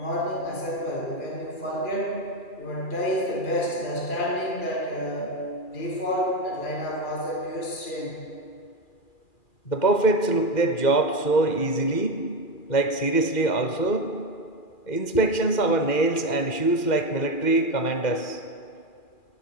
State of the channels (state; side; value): late; right; 2.4 ms